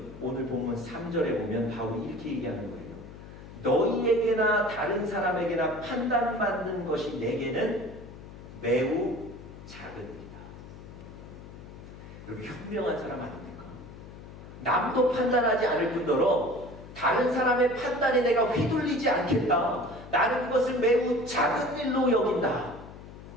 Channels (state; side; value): noise; left; hum, 15 dB below the sound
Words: 오늘 본문 3절에 보면 바울이 이렇게 얘기하는 거예요. 너희에게나 다른 사람에게나 판단받는 것이 내게는 매우 작은 일이다. 여러분, 현명한 사람 아닙니까? 남도 판단하지 않을 뿐더러 다른 사람의 판단에 내가 휘둘리지 않겠다. 나는 그것을 매우 작은 일로 여긴다.